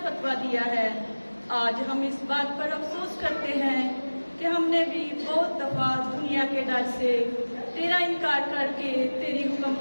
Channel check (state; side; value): inverted; both; correlation -1.00